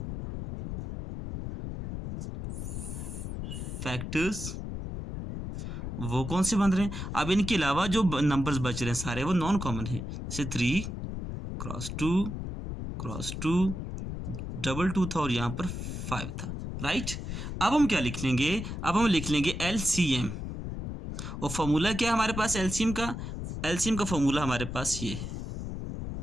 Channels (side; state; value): left; noise; rumble, 6 dB below the sound